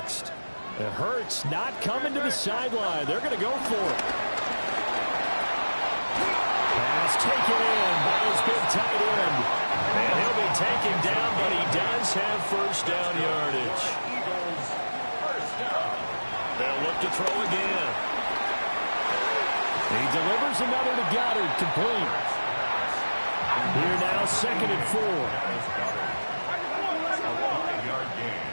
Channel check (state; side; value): inverted; both; correlation -1.00